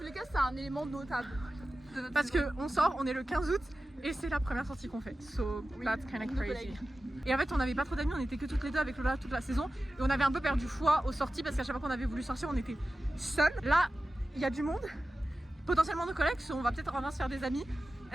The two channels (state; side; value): normal; both; correlation 0.94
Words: les cas c'est un élément notable. Parce que on sort, on est le 15 août et c'est la première sortie qu'on fait. So that's kind of crazy. Et en fait on n'avait pas trop d'amis, on était que toutes les deux avec Lola toute la saison. Et on avait un peu perdu foi aux sorties parce qu'à chaque fois qu'on avait voulu sortir on était seuls. Là il y a du monde, potentiellement nos collègues, so on va peut-être enfin se faire des amis.